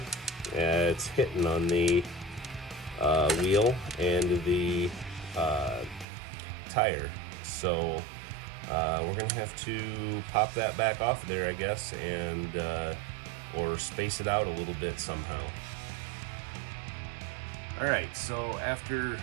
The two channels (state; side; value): drops out; left; at 6.1 s